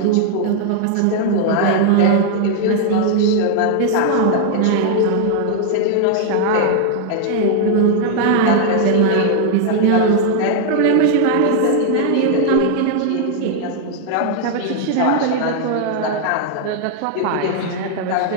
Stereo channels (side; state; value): both; different; correlation 0.00